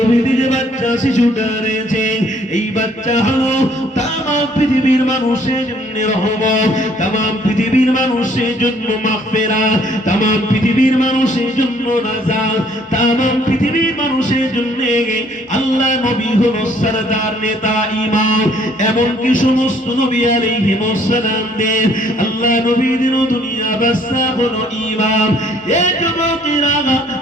যে বাচ্চা বাচ্চা শিশুটা রয়েছে, এই বাচ্চা হলো তাম পৃথিবীর মানুষের জন্য রহমত, তাম পৃথিবীর মানুষের জন্য মাগফিরাত, তাম পৃথিবীর মানুষের জন্য নাজাত, তাম পৃথিবীর মানুষের জন্য আল্লাহ নবী হলো সরদার নেতা ইমাম। এমনকি সমস্ত নবী আলাইহিস সালামদের আল্লাহ নবীদের দুনিয়া বাদশা হলো ইমাম। এই যুবকেরা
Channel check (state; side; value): normal; both; correlation 0.62